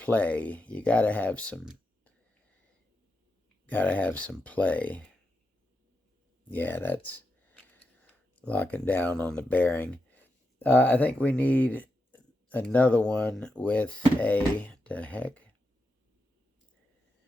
You got to have some play. Yeah, that's locking down on the bearing. I think we need another one with a, the heck?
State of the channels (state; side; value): normal; both; correlation 0.86